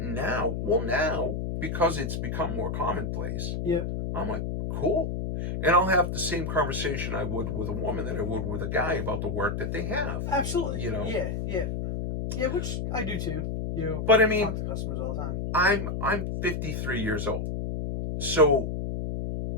now, because it's become more commonplace, I'm like, cool. And I'll have the same conversation I would with a woman that I would with a guy about the work that they have. Absolutely. Yeah, which I do too. But I mean, talk to customers all the time. I'm 53 years old, so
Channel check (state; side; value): noise; left; hum, 2 dB below the sound